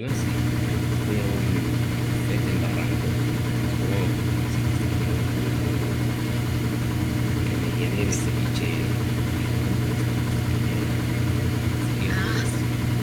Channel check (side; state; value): both; identical; correlation 1.00